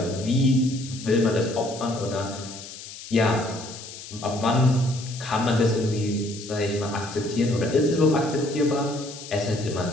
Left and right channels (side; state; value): left; noise; hiss, 13 dB below the sound